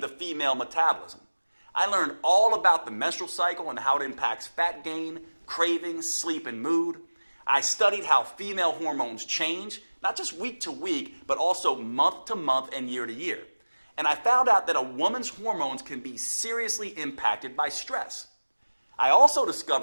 female metabolism. I learned all about the menstrual cycle and how it impacts fat gain, cravings, sleep, and mood. I studied how female hormones change, not just week to week, but also month to month and year to year. And I found out that a woman's hormones can be seriously impacted by stress. I also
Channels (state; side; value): inverted; both; correlation -1.00